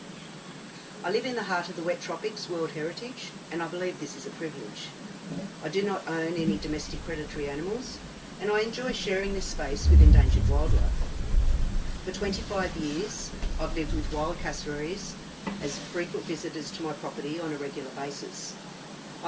I live in the heart of the wet tropics, World Heritage, and I believe this is a privilege. I do not own any domestic predatory animals, and I enjoy sharing this space with endangered wildlife. For 25 years, I've lived with wild cassowaries as frequent visitors to my property on a regular basis.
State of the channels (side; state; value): both; identical; correlation 1.00